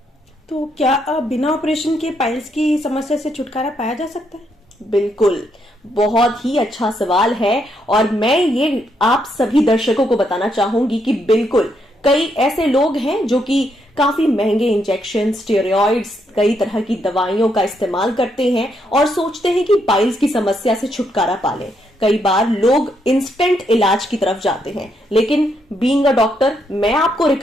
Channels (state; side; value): normal; both; correlation 0.77